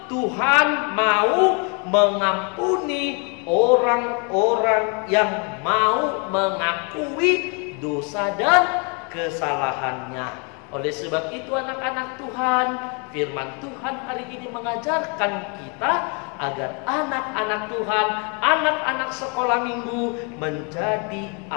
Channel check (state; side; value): quieter; right; 35.3 dB